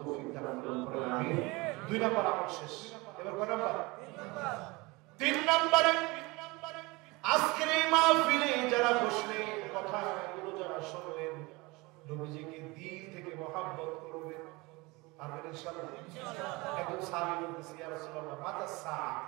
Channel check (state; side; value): quieter; left; 24.2 dB